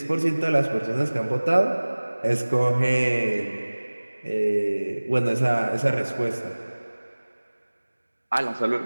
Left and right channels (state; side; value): inverted; both; correlation -1.00